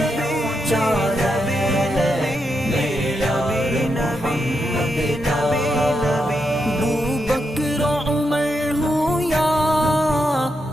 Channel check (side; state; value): both; normal; correlation 0.83